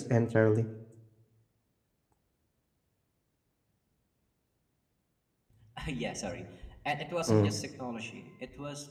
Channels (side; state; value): both; identical; correlation 1.00